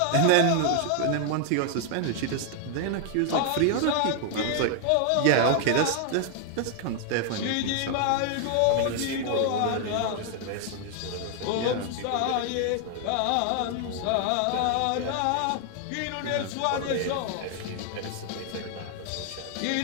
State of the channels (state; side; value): different; both; correlation 0.00